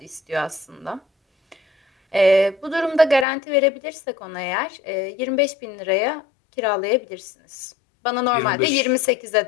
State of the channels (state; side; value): drops out; right; at 3.2 s